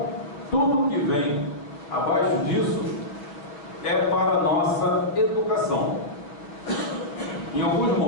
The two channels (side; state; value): right; late; 6.5 ms